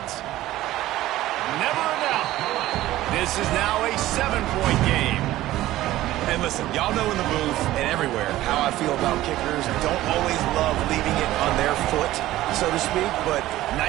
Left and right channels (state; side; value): quieter; left; 15.5 dB